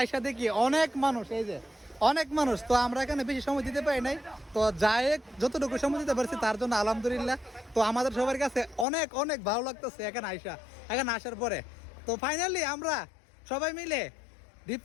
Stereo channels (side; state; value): right; drops out; at 8.8 s